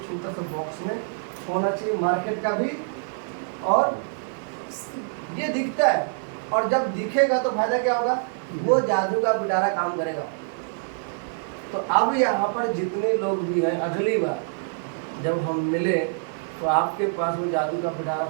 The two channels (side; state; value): left; silent; digital silence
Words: छोटा सा बॉक्स में होना चाहिए, मार्केट का भी। और ये दिखता है, और जब दिखेगा तो फायदा क्या होगा? वो जादू का पिटारा काम करेगा। तो अब यहाँ पर जितने लोग भी हैं, अगली बार जब हम मिले तो आपके पास वो जादू का पिटारा